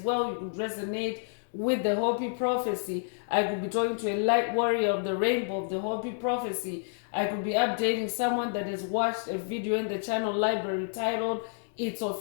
You could resonate with the Hopi prophecy. I could be talking to a light warrior of the rainbow of the Hopi prophecy. I could be updating someone that has watched a video in the channel library titled It's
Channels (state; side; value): silent; right; digital silence